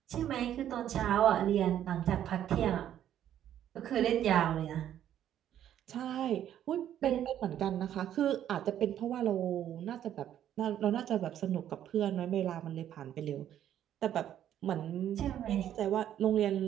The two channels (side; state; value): left; quieter; 10.9 dB